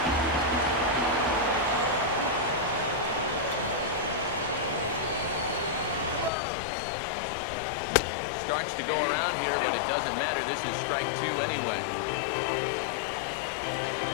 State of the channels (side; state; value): right; drops out; at 6.3 s